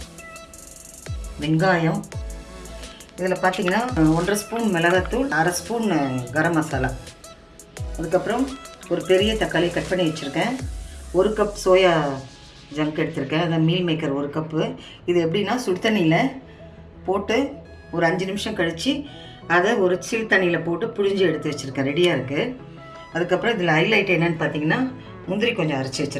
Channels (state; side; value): identical; both; correlation 1.00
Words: வெங்காயம். இதில் பார்த்தீங்கன்னா 1.5 ஸ்பூன் மிளகாத்தூள், 1/2 ஸ்பூன் கரம் மசாலா. அதுக்கப்புறம் ஒரு பெரிய தக்காளி கட் பண்ணி வச்சுருக்கேன். 1 கப் சோயா ஜங்க் எடுத்திருக்கேன், அதை மீல் மேக்கர் 1 கப்பு. இது எப்படின்னா, சுடு தண்ணியில் போட்டு ஒரு 5 நிமிஷம் கழித்து அதை ஒரு சில் தண்ணியில் போட்டு புழிஞ்சு எடுத்து வச்சுருக்கேன், ரெடியாக இருக்குது. அதுக்கப்புறம் இதில் ஹைலைட் என்னென்னு பார்த்தீங்கன்னா, முந்திரி கொஞ்சம் அரைச்சி